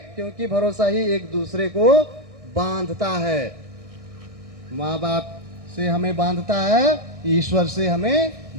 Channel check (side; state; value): left; late; 1.6 ms